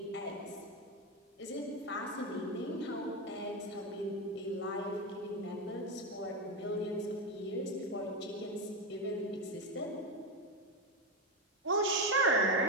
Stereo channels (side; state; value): both; normal; correlation 0.12